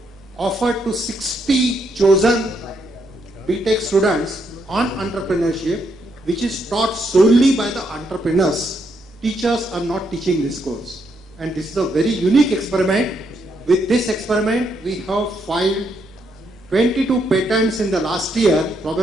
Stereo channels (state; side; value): normal; both; correlation 0.76